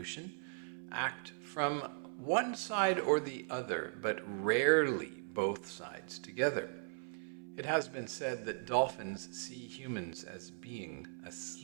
act from one side or the other, but rarely both sides together. It has been said that dolphins see humans as being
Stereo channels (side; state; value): left; silent; 52 dB below the other